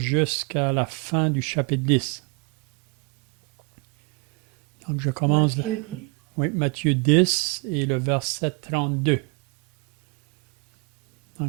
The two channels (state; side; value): quieter; left; 29.3 dB